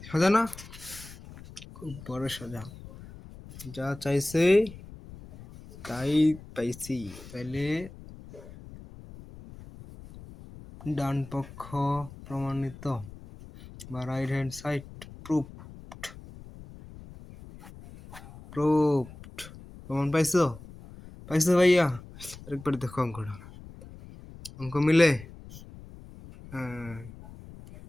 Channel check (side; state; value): left; noise; rumble, 17 dB below the sound